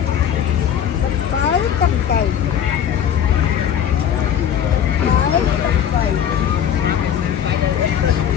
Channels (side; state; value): right; quieter; 9.2 dB